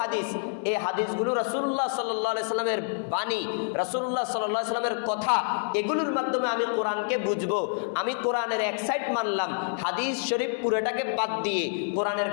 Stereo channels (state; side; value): silent; right; 60 dB below the other